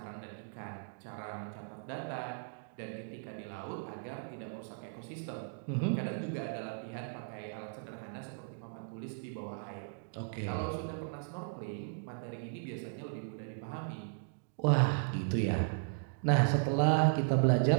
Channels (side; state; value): left; silent; digital silence